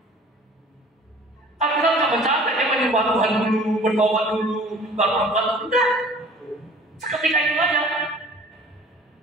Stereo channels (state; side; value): normal; both; correlation 0.48